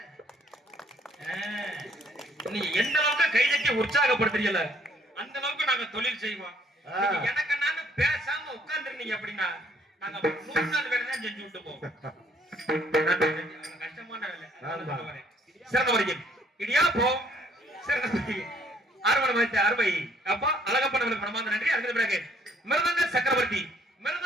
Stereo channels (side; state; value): both; normal; correlation 0.63